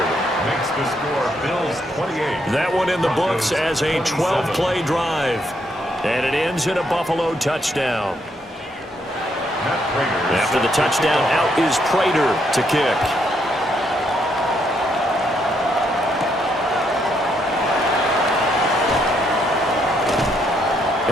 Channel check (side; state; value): both; normal; correlation 0.75